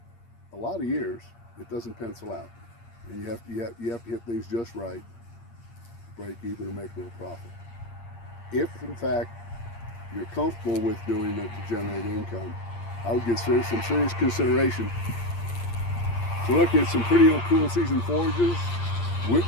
a lot of years it doesn't pencil out, and you have to hit things just right, break even, and make a little profit. If in fact you're comfortable with doing that to generate income, I would give some serious consideration to look at some pretty cool season forages.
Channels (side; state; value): right; late; 8.6 ms